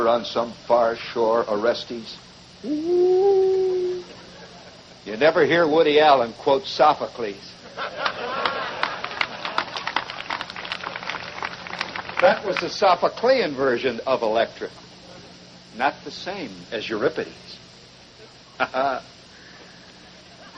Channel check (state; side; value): identical; both; correlation 1.00